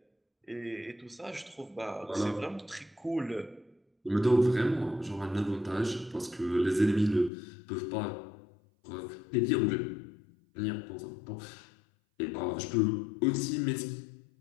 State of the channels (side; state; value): right; drops out; at 7.3 s